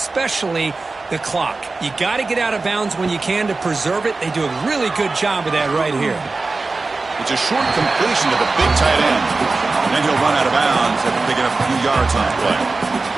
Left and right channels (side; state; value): left; quieter; 3.7 dB